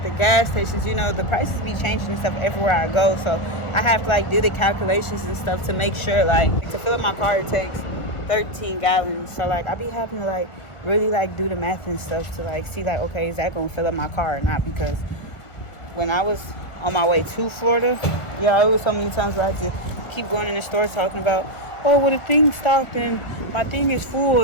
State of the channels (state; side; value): late; right; 1.4 ms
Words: the gas stations, you know, the prices be changing and stuff everywhere I go. So I have to like do the calculations and stuff to make sure, like, to fill up my car it takes 13 gallons. So like I be having to like really like do the math and stuff to like see like, okay, is that gonna fill up my car or not? Because when I was on my way to Florida, yeah, it was so many times where I had to keep going in the store talking about, oh, well, the thing stopped and my thing is full